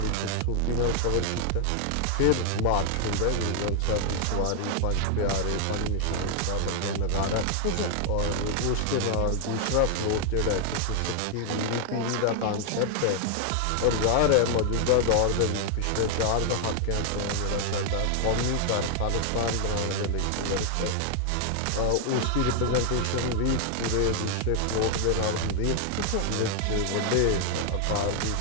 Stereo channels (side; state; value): both; different; correlation 0.00